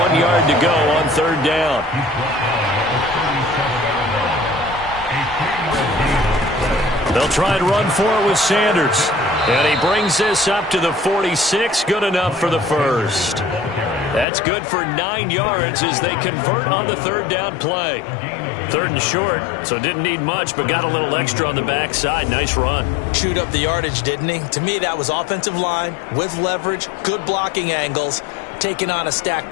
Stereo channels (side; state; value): right; drops out; at 14.2 s